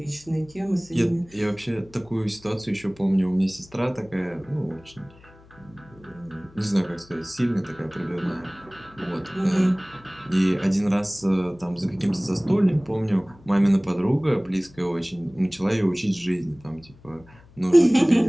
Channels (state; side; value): noise; left; hum, 25 dB below the sound